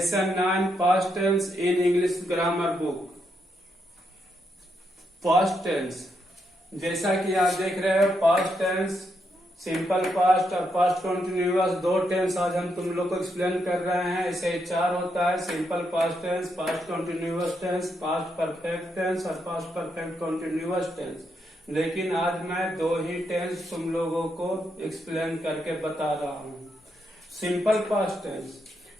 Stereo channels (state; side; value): normal; both; correlation 0.80